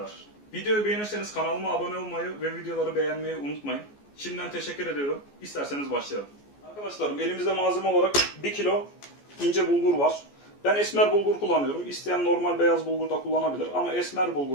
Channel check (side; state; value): right; late; 14 ms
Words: Videoyu beğenirseniz kanalıma abone olmayı ve videoları beğenmeyi unutmayın. Şimdiden teşekkür ediyorum. İsterseniz başlayalım. Arkadaşlarım elimizde malzeme olarak 1 kilo ince bulgur var. Ben esmer bulgur kullanıyorum. İsteyen normal beyaz bulgur da kullanabilir ama esmer